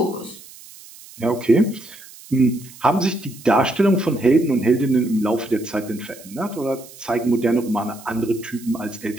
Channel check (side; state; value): right; noise; hiss, 19 dB below the sound